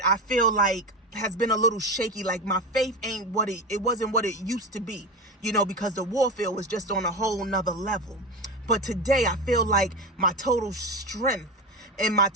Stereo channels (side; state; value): both; normal; correlation 0.21